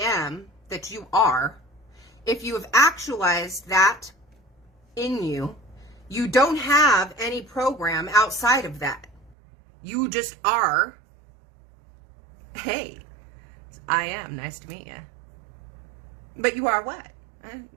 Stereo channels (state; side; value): drops out; left; at 9.3 s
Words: am that you are, if you have actualized that in you, you don't have any program outside of that. You just are. Hey, I am. Nice to meet you. But you are what?